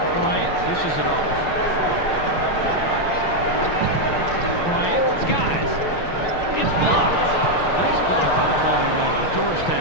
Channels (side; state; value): right; late; 6.1 ms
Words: Bryant dishes it off. Bryant skies. It's blocked. Nice block by the 12-year man out of